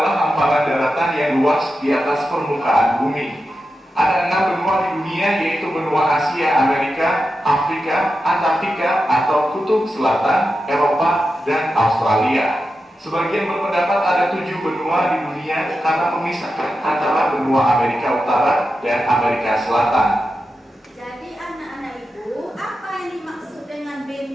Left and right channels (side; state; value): both; normal; correlation 0.90